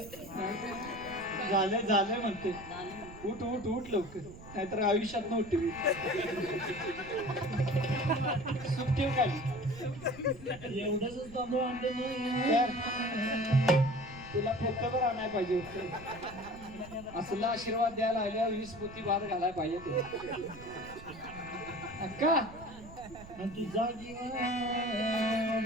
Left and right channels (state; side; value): noise; right; rumble, 16 dB below the sound